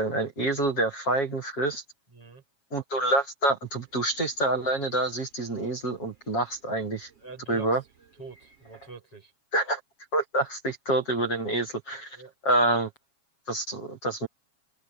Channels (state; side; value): late; right; 7.2 ms